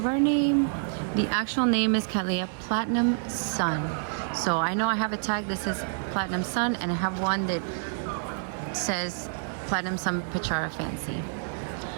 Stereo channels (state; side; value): silent; left; digital silence